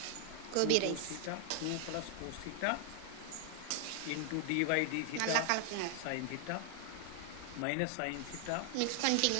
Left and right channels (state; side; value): different; both; correlation 0.00